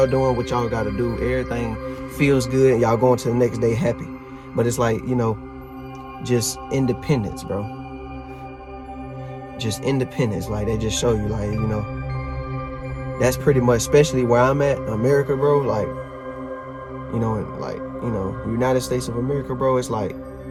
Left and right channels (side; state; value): both; identical; correlation 1.00